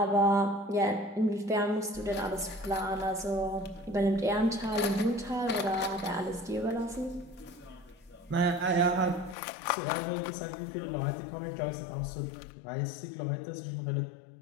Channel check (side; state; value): right; drops out; at 9.3 s